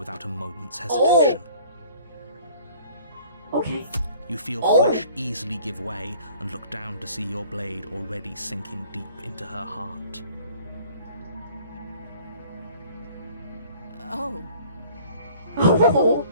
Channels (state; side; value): inverted; both; correlation -0.51